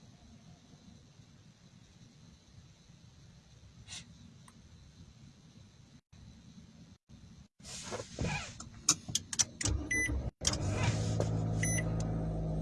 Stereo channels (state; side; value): identical; both; correlation 1.00